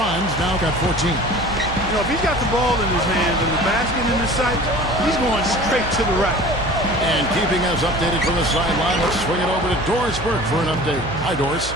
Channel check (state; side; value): noise; right; hum, 10 dB below the sound